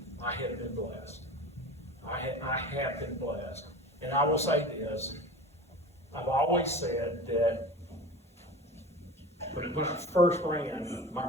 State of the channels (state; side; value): normal; both; correlation 0.34